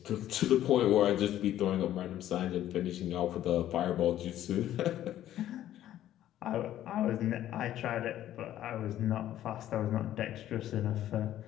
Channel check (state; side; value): quieter; right; 12.5 dB